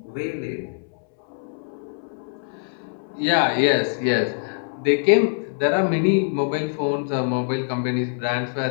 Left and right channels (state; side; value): silent; right; 63 dB below the other